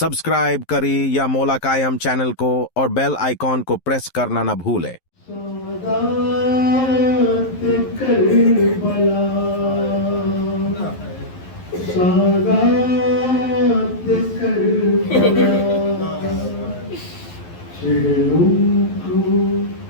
करें या मौला कायम चैनल को और बेल आइकॉन को प्रेस करना न भूलें।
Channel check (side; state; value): right; late; 11 ms